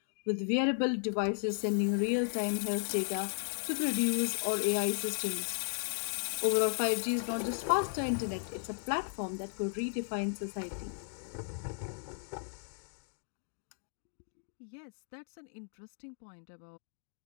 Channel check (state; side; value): silent; right; 54 dB below the other